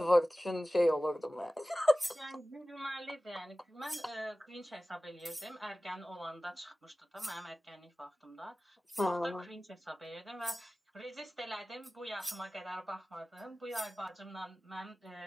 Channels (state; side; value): normal; both; correlation 0.97